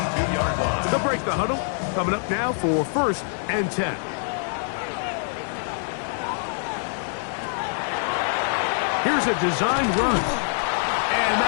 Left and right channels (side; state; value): right; silent; 62 dB below the other